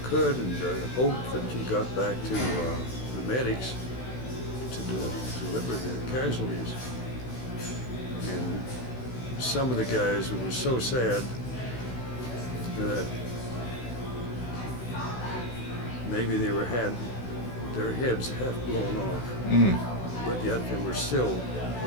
could, and hoped that you got back to the medics to deliver the casualties. And some of the guys, it was so sad that maybe they had their heads half blown off, but yet they were still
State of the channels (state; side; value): late; right; 16 ms